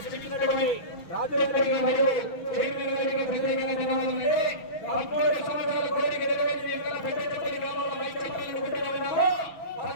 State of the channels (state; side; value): late; right; 6.1 ms